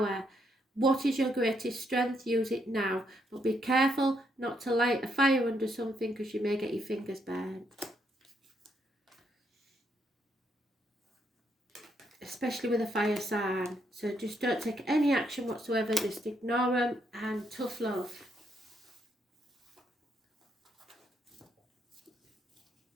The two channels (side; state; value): both; normal; correlation 0.76